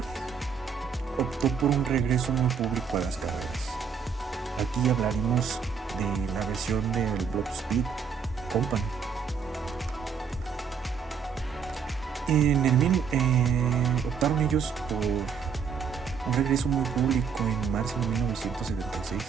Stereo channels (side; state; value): left; quieter; 6.4 dB